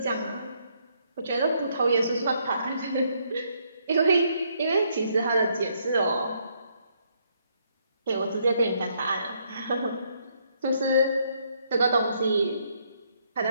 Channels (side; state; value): both; inverted; correlation -0.72